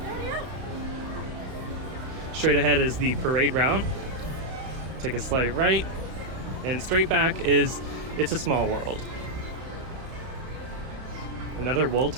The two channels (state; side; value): late; left; 31 ms